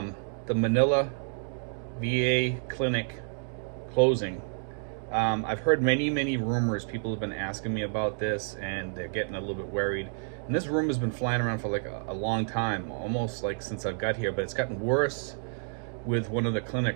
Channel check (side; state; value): left; silent; digital silence